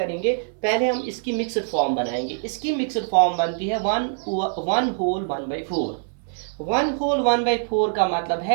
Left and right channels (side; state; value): left; silent; digital silence